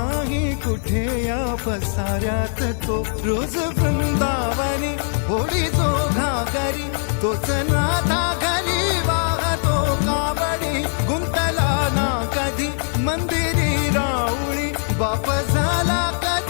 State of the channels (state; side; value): silent; right; 60 dB below the other